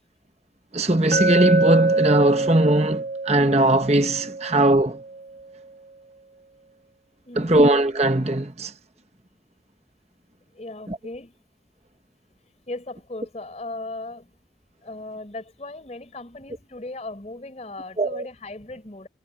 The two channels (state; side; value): normal; both; correlation 0.51